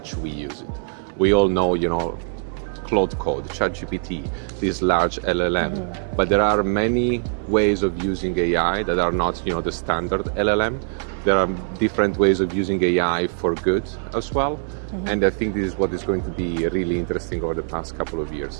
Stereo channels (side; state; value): left; silent; digital silence